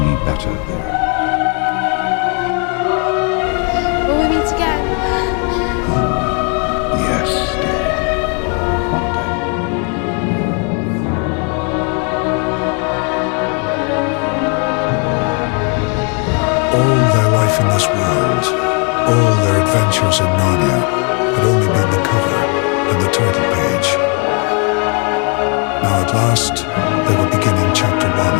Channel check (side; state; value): right; quieter; 37.3 dB